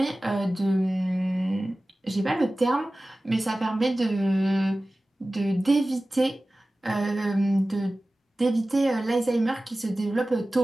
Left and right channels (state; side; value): normal; both; correlation 0.96